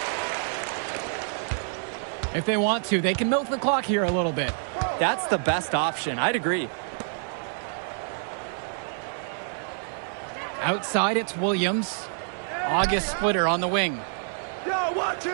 If they want to, they can milk the clock here a little bit. That's the best option. I'd agree. Outside, it's Williams. August Splitter on the wing.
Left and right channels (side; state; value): left; silent; 60 dB below the other